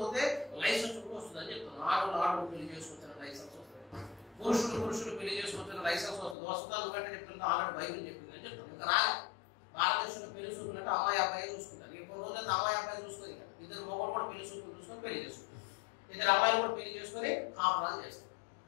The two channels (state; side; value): drops out; right; at 6.4 s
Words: పోతే లైసెన్స్ కూడా వస్తుంది అని చెప్తున్నాను. ఆడవాళ్ళు పెళ్లి చేసుకొచ్చిన లైసెన్స్ వస్తుంది, పురుషులు పెళ్లి చేసుకొచ్చిన లైసెన్స్ వస్తుంది. వస్తుందా కంటే చెప్తుంటే ఆల్రెడీ బైబిల్ చెప్పింది అని చెప్తాను. ఇంకా రాలే. భారతదేశంలో పెళ్లి చూసుకున్నట్టు అమ్మాయి అబ్బాయి చూసుకుంటారు. ఇంకో రోజులైతే అమ్మాయి అబ్బాయి చూసుకొని ఇద్దరు మొగలు కూడా పెళ్లి చూసుకొని పెళ్లి చేసుకుంటారు. ఇద్దరు అమ్మాయిలు కూడా పెళ్లి చేసుకొని కాపురాలు చేస్తారు.